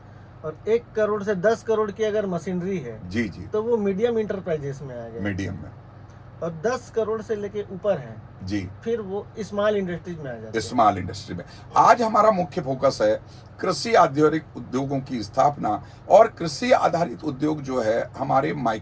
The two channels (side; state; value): both; identical; correlation 1.00